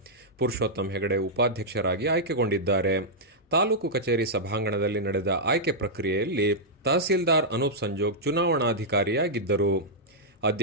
ಪುರುಷೋತ್ತಮ್ ಹೆಗಡೆ ಉಪಾಧ್ಯಕ್ಷರಾಗಿ ಆಯ್ಕೆಗೊಂಡಿದ್ದಾರೆ. ತಾಲೂಕು ಕಚೇರಿ ಸಭಾಂಗಣದಲ್ಲಿ ನಡೆದ ಆಯ್ಕೆ ಪ್ರಕ್ರಿಯೆಯಲ್ಲಿ ತಹಸೀಲ್ದಾರ್ ಅನೂಪ್ ಸಂಜೋಗ್ ಚುನಾವಣಾಧಿಕಾರಿಯಾಗಿದ್ದರು.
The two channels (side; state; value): both; normal; correlation -0.08